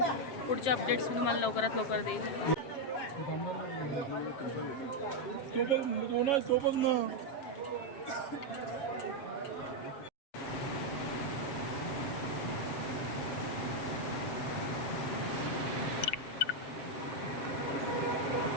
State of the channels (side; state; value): right; late; 7.5 ms